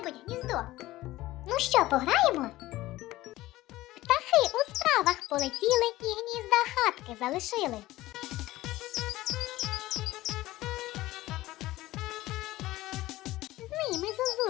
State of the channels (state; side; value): quieter; right; 17.0 dB